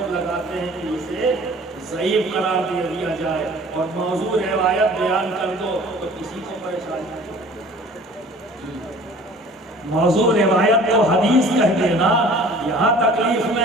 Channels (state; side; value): normal; both; correlation 0.48